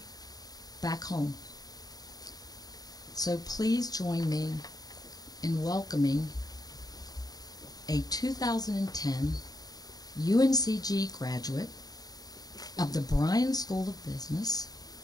back home. So please join me in welcoming a 2010 UNCG graduate of the Bryan School of Business,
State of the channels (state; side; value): late; right; 0.18 ms